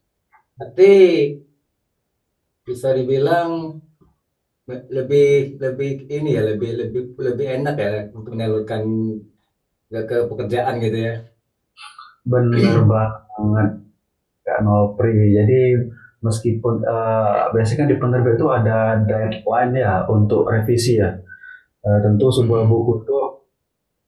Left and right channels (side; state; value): both; identical; correlation 1.00